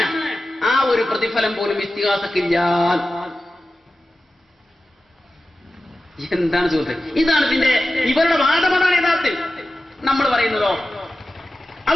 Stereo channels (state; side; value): normal; both; correlation 0.93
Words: ആ ഒരു പ്രതിഫലം പോലും ഇസ്തിഗാസക്കില്ല. എന്താണ് സുഹൃത്ത്? ഇതാണ് ഇവരുടെ വാദമാണ് യഥാർത്ഥത്തിൽ. നമ്മൾ പറയുന്നതോ